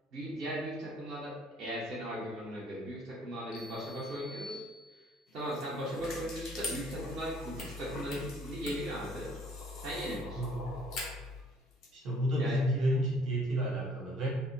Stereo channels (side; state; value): both; normal; correlation 0.59